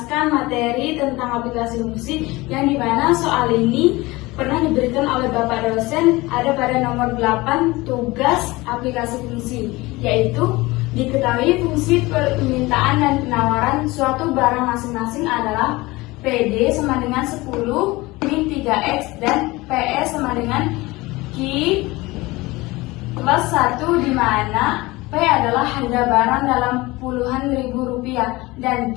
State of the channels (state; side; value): quieter; right; 21.3 dB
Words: materi tentang aplikasi fungsi yang dimana soal ini pernah diberikan oleh Bapak dosen, ada pada nomor 8 tugas aplikasi fungsi, yaitu diketahui fungsi permintaan dan penawaran suatu barang masing-masing adalah PD sama dengan 10 min 3X dan PS sama dengan Q plus 1, di mana P adalah harga barang dalam puluhan ribu rupiah dan